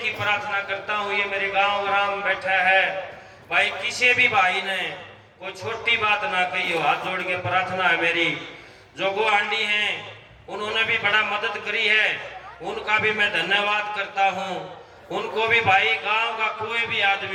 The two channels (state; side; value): identical; both; correlation 1.00